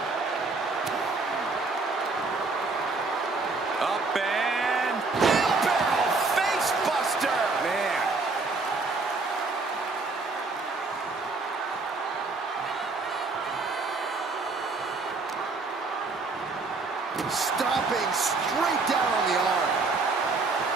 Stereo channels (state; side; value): quieter; left; 3.8 dB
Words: Up and... Wheelbarrow face buster! Man. Stomping straight down on the arm.